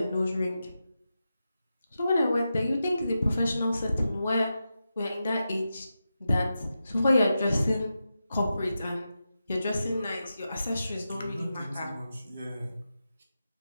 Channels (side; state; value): both; inverted; correlation -0.90